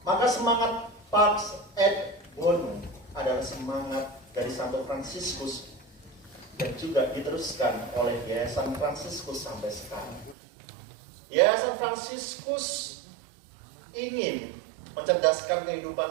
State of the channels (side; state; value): left; drops out; at 10.4 s